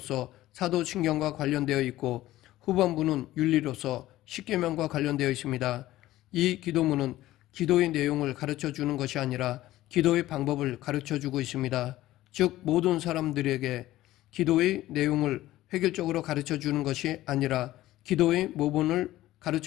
사도신경과 관련되어 있고 후반부는 윤리로서 십계명과 관련되어 있습니다. 이 기도문은 기도의 내용을 가르쳐 주는 것이 아니라 기도의 방법을 가르쳐 주고 있습니다. 즉 모든 사람들에게 기도의 내용을 획일적으로 가르쳐 주는 것이 아니라 기도의 모본을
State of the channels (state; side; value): quieter; right; 15.6 dB